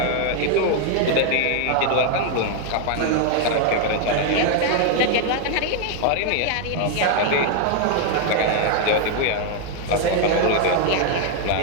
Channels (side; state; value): both; different; correlation 0.00